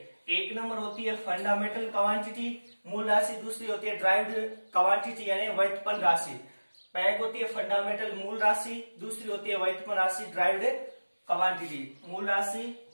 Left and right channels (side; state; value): both; inverted; correlation -1.00